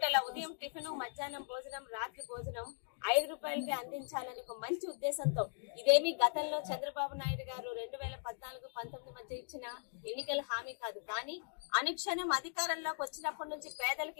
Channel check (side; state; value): right; silent; digital silence